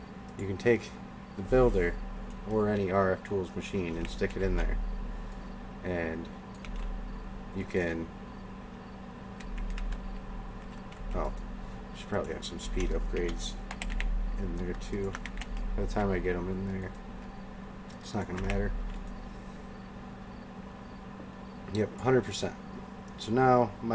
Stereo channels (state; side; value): identical; both; correlation 1.00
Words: you can take the builder or any RF Tools machine and stick it in there, and you can, should probably have some speed upgrades in there too. By the time I get them in there, it's not going to matter. Yep, 100%. So now